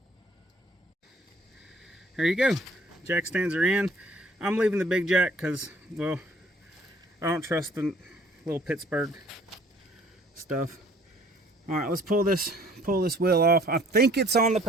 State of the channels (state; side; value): normal; both; correlation 0.57